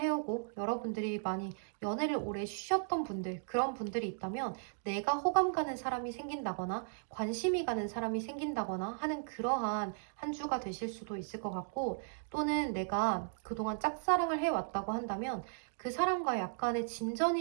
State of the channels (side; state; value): left; silent; digital silence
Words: 여러분들이 많이 연애를 오래 쉬셨던 분들, 그런 분들이 있다면 내가 호감 가는 사람이 생긴다거나 관심이 가는 사람이 생긴다거나 하는 그러한 한 주가 되실 수도 있을 것 같고, 또는 내가 그동안 짝사랑을 해왔다고 한다면 그 사람과 약간의